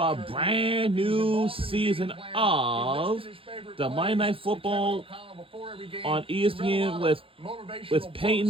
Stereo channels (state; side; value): late; left; 0.26 ms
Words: brand new season of the Monday Night Football on ESPN with